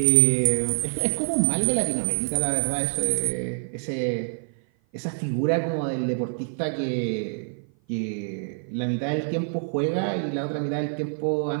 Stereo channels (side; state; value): left; silent; 56 dB below the other